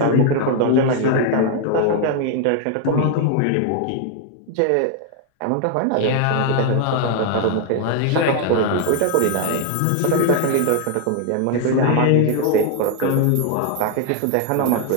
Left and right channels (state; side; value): different; both; correlation 0.00